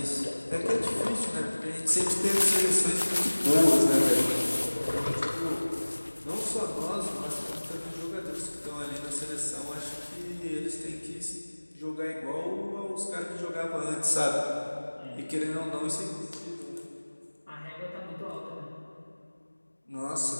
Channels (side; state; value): both; inverted; correlation -1.00